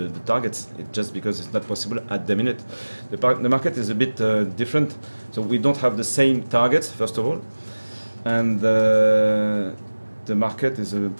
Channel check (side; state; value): both; inverted; correlation -1.00